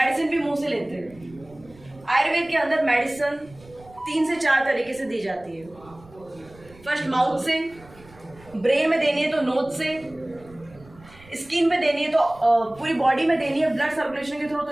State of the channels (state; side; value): noise; right; rumble, 24 dB below the sound